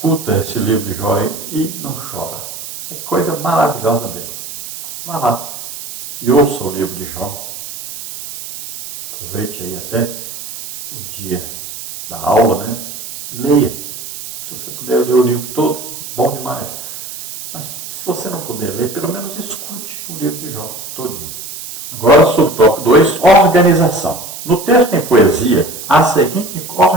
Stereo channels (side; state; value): right; noise; hiss, 10 dB below the sound